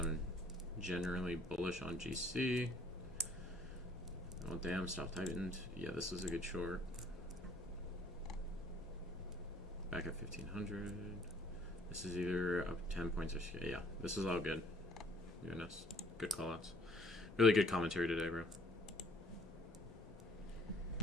generally bullish on GC. Oh damn, stop tightened. Yeah, this was a good short. Back at 1500. This is either up 10 points or yeah. This is all good. Goodness, good callouts. Really good commentary today, bro.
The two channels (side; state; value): both; normal; correlation 0.57